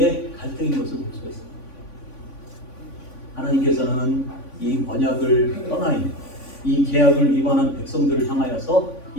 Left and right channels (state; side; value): late; right; 3.5 ms